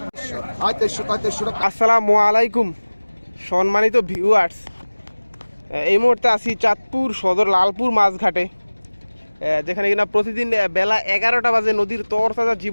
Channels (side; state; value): both; inverted; correlation -1.00